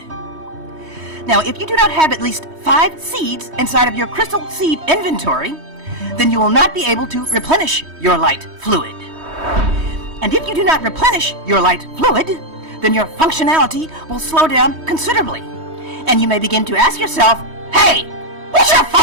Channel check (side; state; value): left; late; 3.2 ms